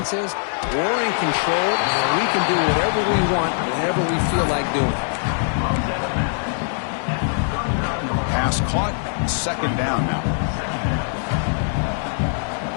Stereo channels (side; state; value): right; silent; 64 dB below the other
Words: is we're in control, and we can do whatever we want, whenever we feel like doing. Pass caught. Second down now.